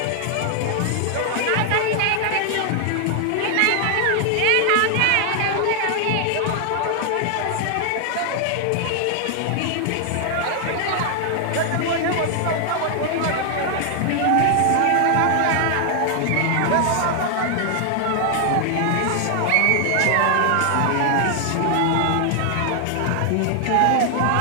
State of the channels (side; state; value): both; different; correlation 0.00